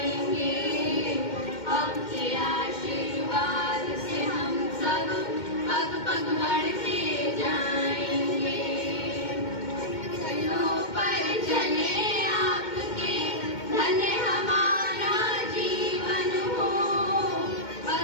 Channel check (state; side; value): late; right; 2.1 ms